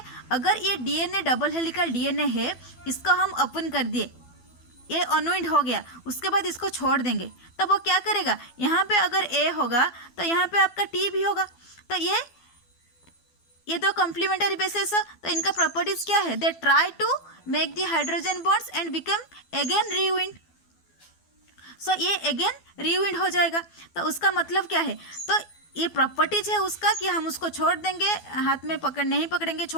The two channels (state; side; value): late; right; 12 ms